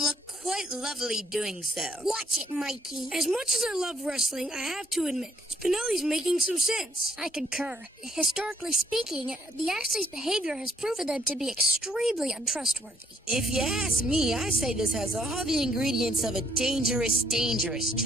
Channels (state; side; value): normal; both; correlation 0.68